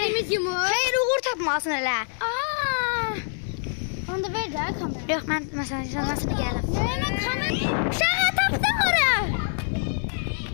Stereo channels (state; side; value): silent; right; digital silence